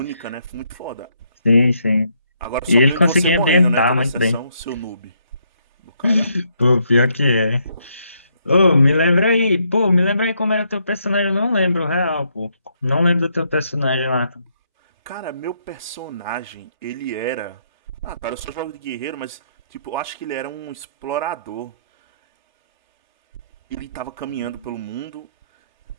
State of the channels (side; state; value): both; inverted; correlation -0.74